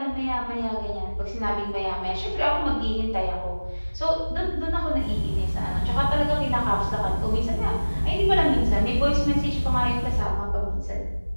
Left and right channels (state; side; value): inverted; both; correlation -1.00